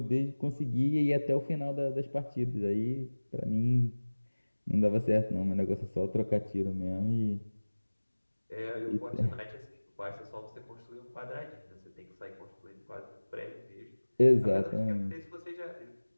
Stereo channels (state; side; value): inverted; both; correlation -1.00